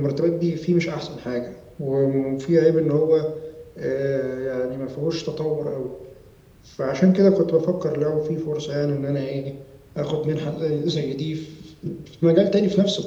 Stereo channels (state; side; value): identical; both; correlation 1.00